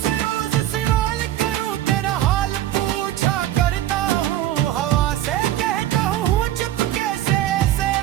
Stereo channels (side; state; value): left; quieter; 13.2 dB